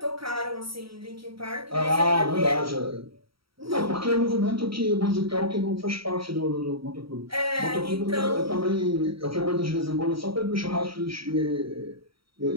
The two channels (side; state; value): left; late; 0.75 ms